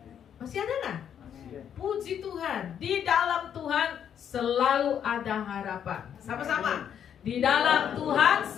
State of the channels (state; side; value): quieter; right; 8.8 dB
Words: Masih ada nggak? Puji Tuhan, di dalam Tuhan selalu ada harapan. Sama-sama, di dalam Tuhan